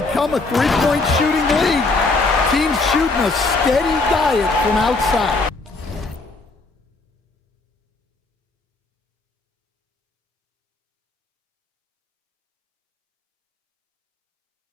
a three-point shooting league. Teams shooting a steady diet from outside.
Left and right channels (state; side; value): quieter; right; 3.5 dB